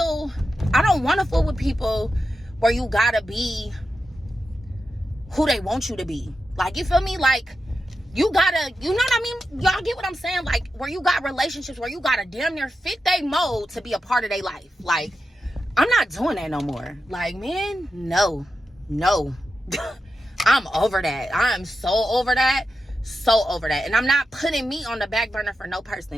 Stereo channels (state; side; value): normal; both; correlation 0.90